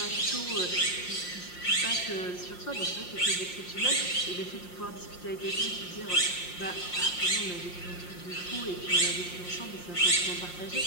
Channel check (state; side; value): late; right; 5.6 ms